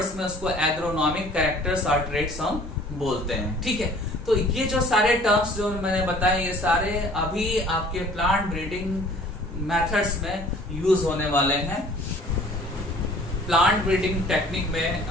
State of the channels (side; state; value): both; normal; correlation 0.51